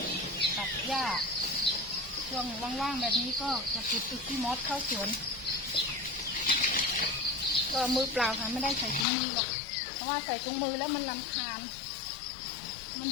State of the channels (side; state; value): right; drops out; at 9.1 s